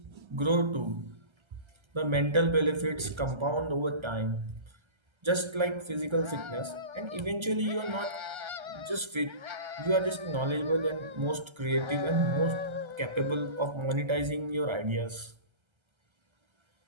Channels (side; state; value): left; late; 1.3 ms